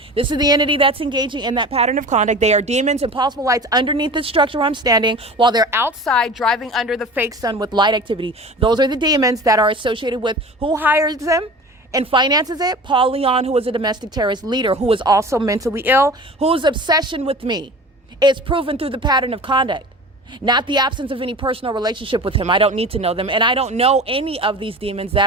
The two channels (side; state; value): both; normal; correlation 0.37